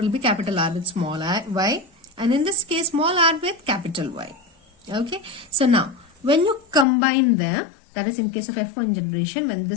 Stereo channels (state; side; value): drops out; right; at 6.9 s